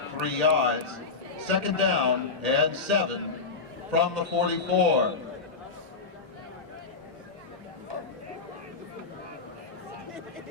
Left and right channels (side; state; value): right; quieter; 4.3 dB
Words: 3 yards. 2nd down and 7 from the 44.